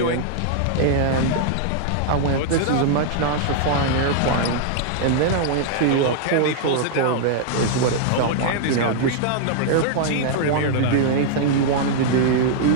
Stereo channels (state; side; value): different; both; correlation -0.01